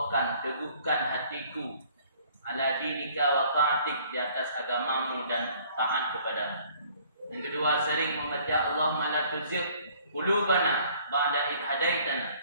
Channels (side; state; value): both; inverted; correlation -0.57